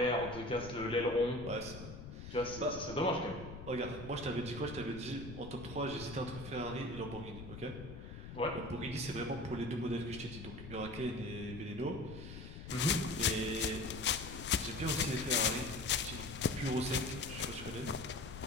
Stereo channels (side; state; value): left; noise; rumble, 11 dB below the sound